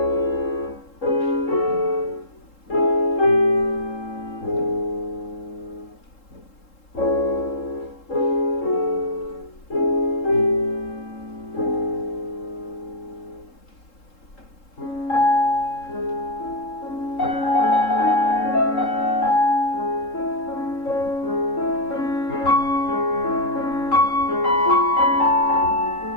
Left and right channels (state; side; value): late; right; 3.7 ms